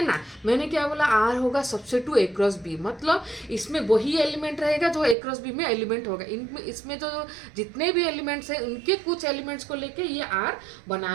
ना? मैंने क्या बोला? आर होगा subset to A cross B. मतलब इसमें वही एलिमेंट रहेगा जो ए क्रॉस बी में एलिमेंट होगा। इनमें इसमें जो जितने भी एलिमेंट्स हैं उनके कुछ एलिमेंट्स को लेके ये आर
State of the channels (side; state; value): left; drops out; at 5.2 s